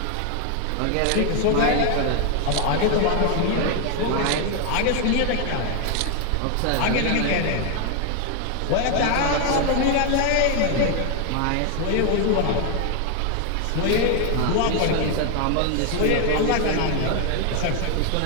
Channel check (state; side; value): different; both; correlation 0.00